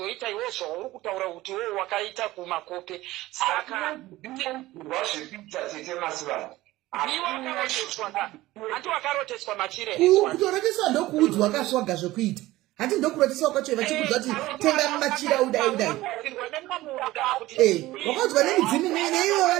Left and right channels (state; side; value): quieter; left; 17.4 dB